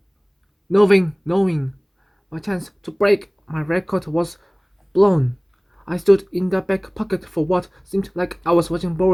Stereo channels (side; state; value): both; identical; correlation 1.00